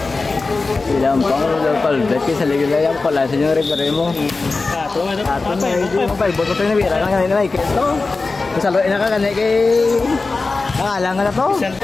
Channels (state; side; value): quieter; right; 3.8 dB